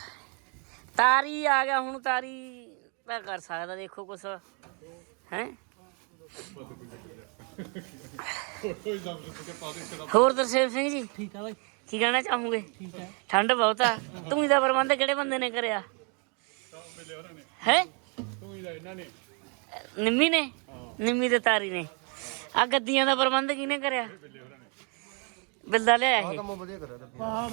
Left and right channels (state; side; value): quieter; left; 36.2 dB